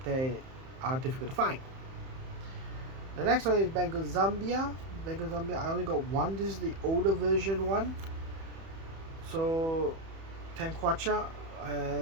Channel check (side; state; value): left; late; 31 ms